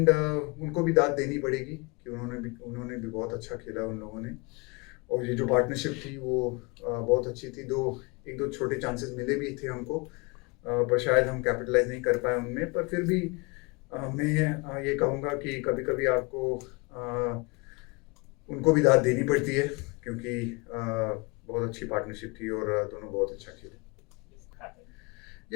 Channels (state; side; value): quieter; right; 28.5 dB